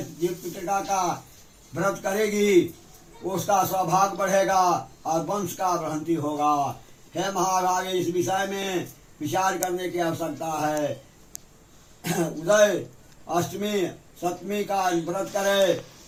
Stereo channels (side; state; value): both; identical; correlation 1.00